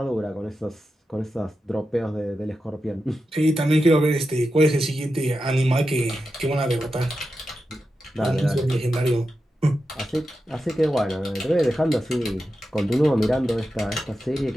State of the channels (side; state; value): both; normal; correlation 0.90